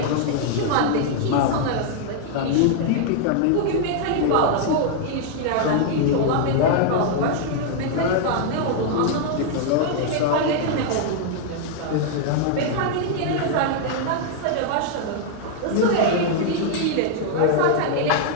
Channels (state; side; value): different; both; correlation 0.00